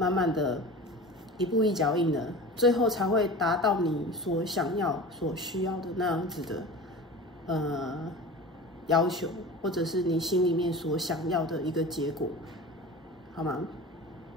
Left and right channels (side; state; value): both; normal; correlation 0.34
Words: 慢的一步一脚印的，最后才会达到你所想要、所需要的那样子的要求，或者是你心里面所想要的一个结果，好吗？